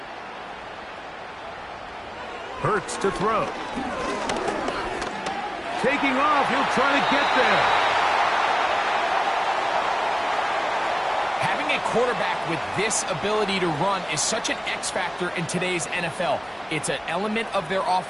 Hurts to throw. Taking off, he'll try to get there. Having Having a quarterback with this ability to run is such an X factor in today's NFL. It's an element of their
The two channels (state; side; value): identical; both; correlation 1.00